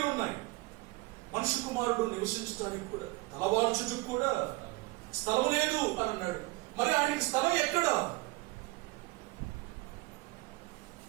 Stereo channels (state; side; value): quieter; left; 21.8 dB